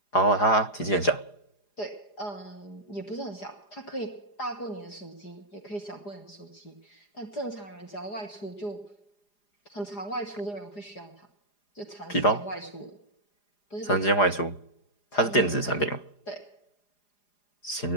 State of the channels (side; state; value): right; late; 4.9 ms